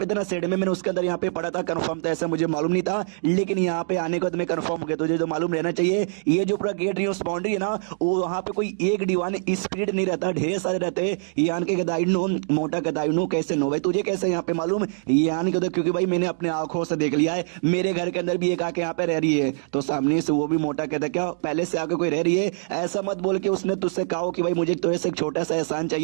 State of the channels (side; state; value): left; silent; digital silence